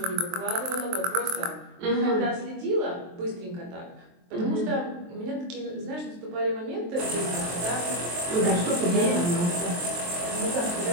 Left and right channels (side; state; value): left; late; 23 ms